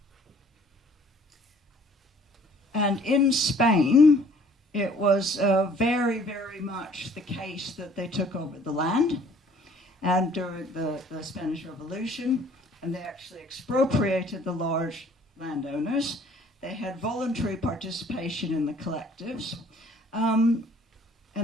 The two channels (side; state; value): both; normal; correlation 0.56